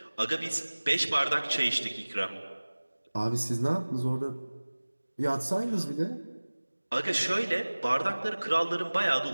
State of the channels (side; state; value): both; inverted; correlation -1.00